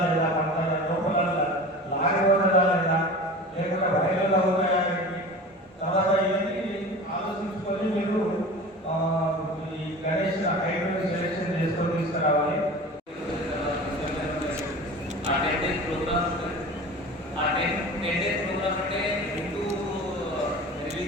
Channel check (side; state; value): both; normal; correlation 0.36